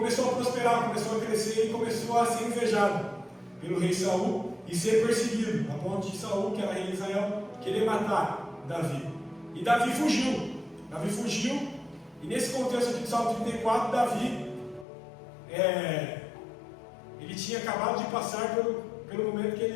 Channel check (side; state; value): right; drops out; at 14.9 s